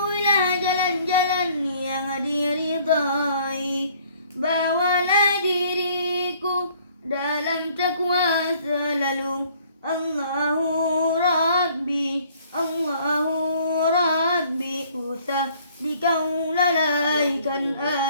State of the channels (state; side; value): inverted; both; correlation -0.59